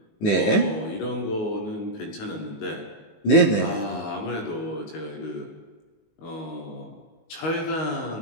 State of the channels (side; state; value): right; late; 19 ms